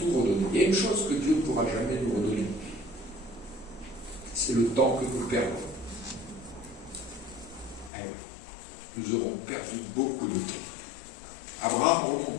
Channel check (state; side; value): drops out; right; at 7.9 s